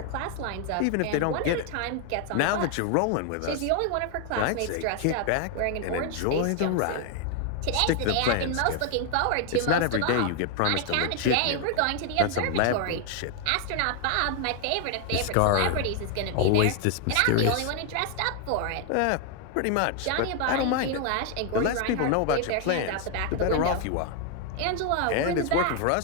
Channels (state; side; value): different; both; correlation 0.00